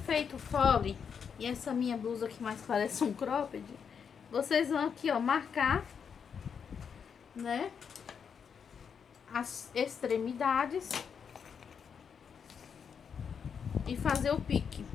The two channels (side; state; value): right; quieter; 6.8 dB